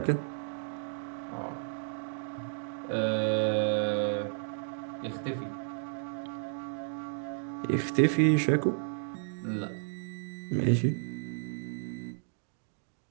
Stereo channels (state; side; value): silent; left; digital silence